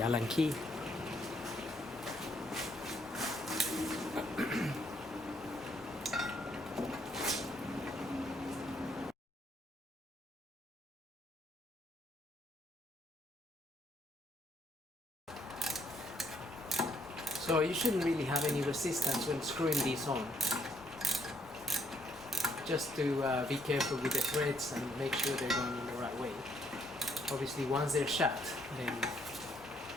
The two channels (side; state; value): both; normal; correlation 0.71